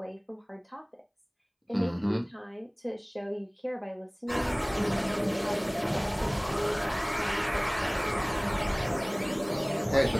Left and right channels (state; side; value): identical; both; correlation 1.00